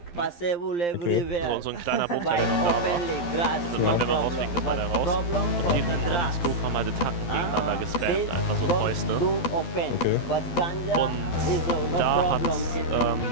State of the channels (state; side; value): late; right; 12 ms